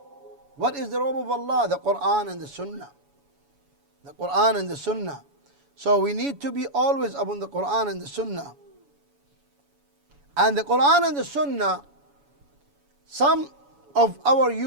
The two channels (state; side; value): late; left; 7.1 ms